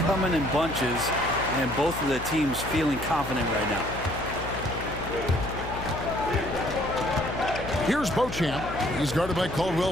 in bunches, and both of the teams feeling confident right now. Here's Beauchamp. He's guarded by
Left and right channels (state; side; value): noise; left; hum, 10 dB below the sound